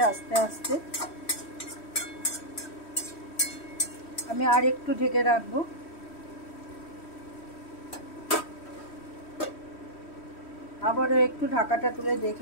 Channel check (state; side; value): late; right; 3.1 ms